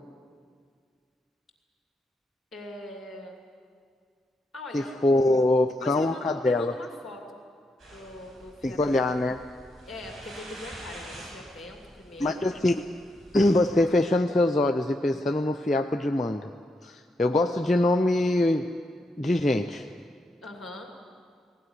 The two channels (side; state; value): both; normal; correlation 0.81